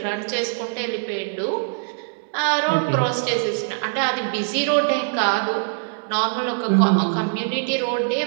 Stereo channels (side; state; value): left; silent; 64 dB below the other